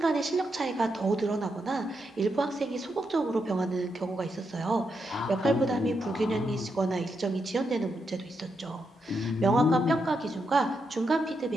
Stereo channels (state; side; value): normal; both; correlation 0.83